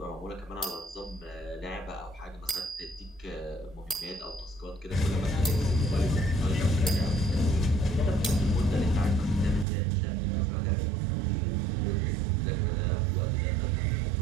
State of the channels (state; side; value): drops out; left; at 9.7 s